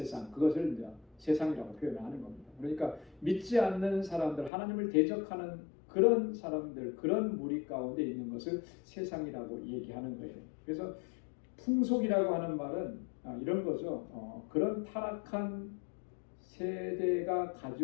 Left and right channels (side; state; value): right; drops out; at 4.5 s